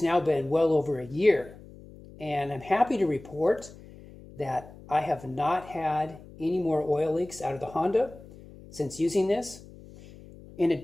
now been well over a year, and I'm happy to report that I have not had any more oil leaks out of the Honda since using this. In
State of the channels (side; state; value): left; noise; hum, 19 dB below the sound